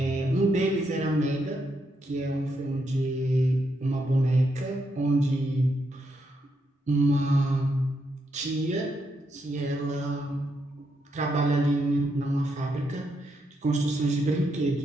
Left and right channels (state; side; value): normal; both; correlation 0.80